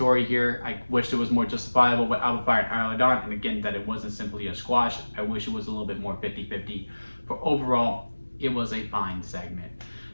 here. I wish it was more justifiable with Out of Fire and Isla Dawn, and again, that it wasn't simply a squash. I wish it was a little bit more 50-50. But overall, it was a fine segment.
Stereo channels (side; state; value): both; inverted; correlation -1.00